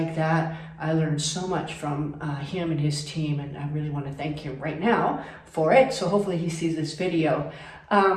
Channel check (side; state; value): both; identical; correlation 1.00